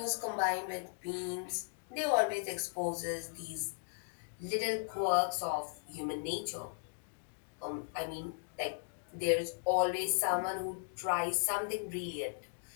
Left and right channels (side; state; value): right; silent; digital silence